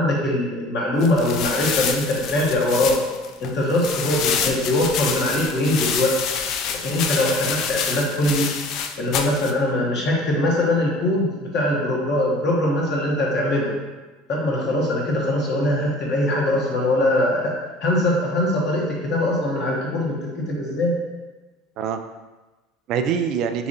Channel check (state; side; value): normal; both; correlation 0.47